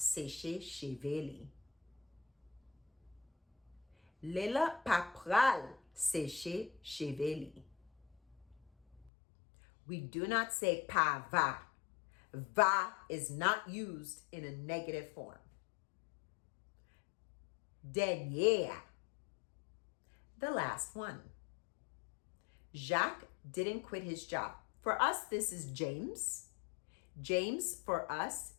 cheveux li. Layla pa pral sécher cheveux li. We do not say pa va. Va is not used in a negative form. Dernier. The last one. Jacques didn't quit his job. For us, this is James. James, for us,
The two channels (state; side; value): drops out; right; at 9.1 s